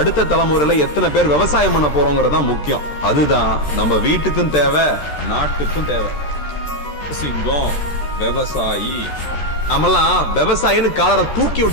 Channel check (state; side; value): late; right; 13 ms